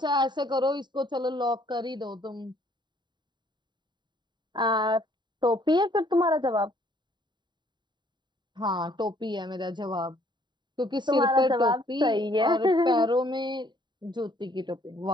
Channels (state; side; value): late; left; 0.22 ms